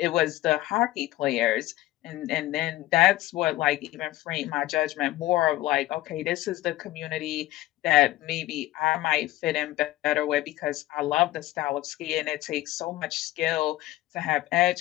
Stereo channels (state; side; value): quieter; right; 16.4 dB